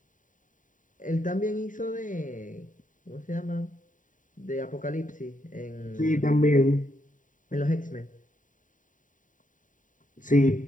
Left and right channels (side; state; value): right; late; 0.38 ms